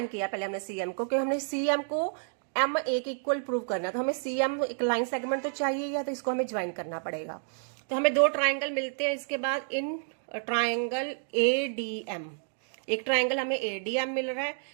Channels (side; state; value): left; silent; digital silence